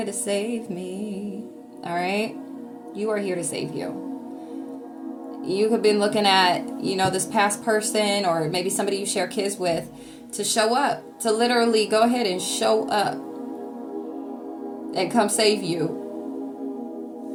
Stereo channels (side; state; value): both; identical; correlation 1.00